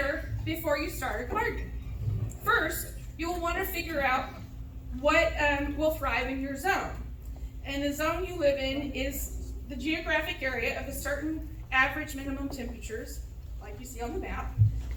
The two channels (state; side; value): identical; both; correlation 1.00